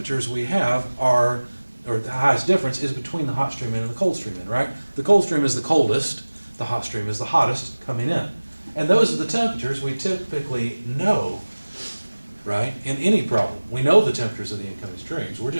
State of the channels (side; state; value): both; inverted; correlation -1.00